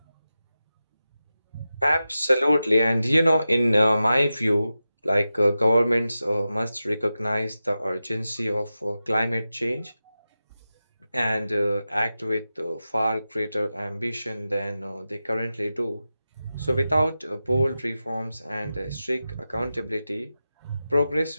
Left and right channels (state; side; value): inverted; both; correlation -0.92